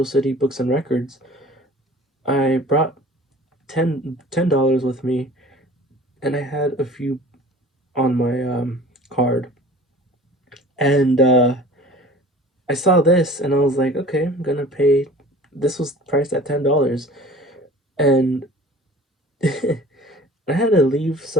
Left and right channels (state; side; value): normal; both; correlation 0.44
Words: City Books and Records, I brought $10 with me, and I had a few on my card, and I saw this, and I was like, okay, I'm gonna pay. This was priced at $10, and I had to leave